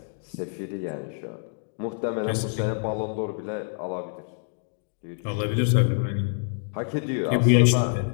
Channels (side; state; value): right; silent; digital silence